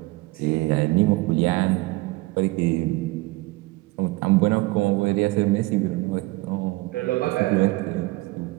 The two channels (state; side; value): quieter; left; 21.3 dB